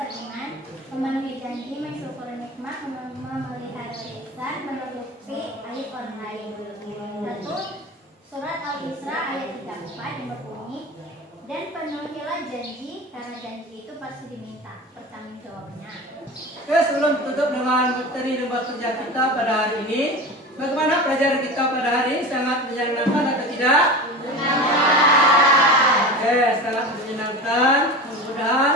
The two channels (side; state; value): both; normal; correlation 0.31